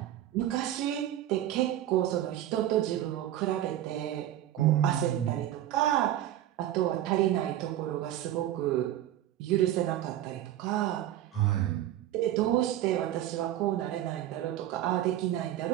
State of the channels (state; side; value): quieter; left; 12.7 dB